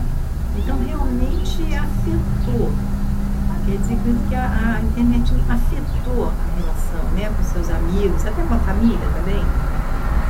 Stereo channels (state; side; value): identical; both; correlation 1.00